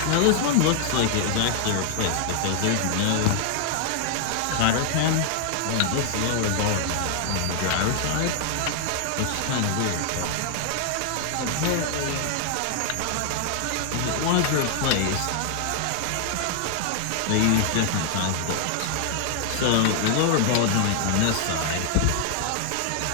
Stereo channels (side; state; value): both; different; correlation 0.00